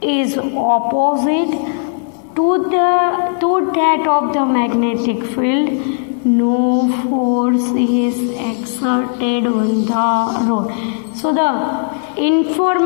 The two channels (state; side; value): silent; right; 60 dB below the other